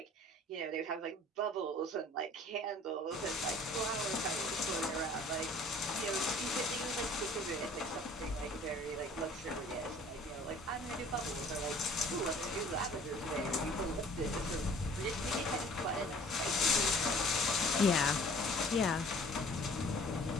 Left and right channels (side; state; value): both; normal; correlation 0.51